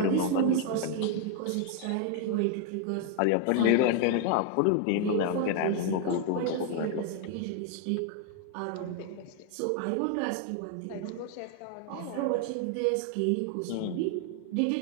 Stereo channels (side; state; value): both; different; correlation 0.00